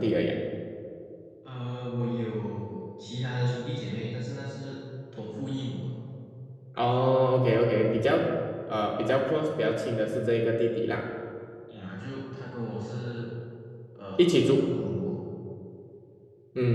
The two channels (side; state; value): both; identical; correlation 1.00